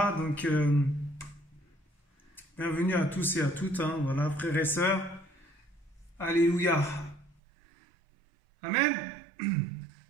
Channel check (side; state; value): left; drops out; at 7.4 s